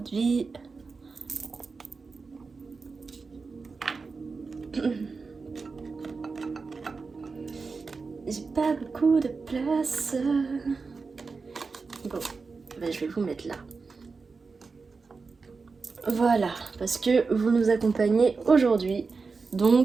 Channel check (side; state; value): left; quieter; 4.5 dB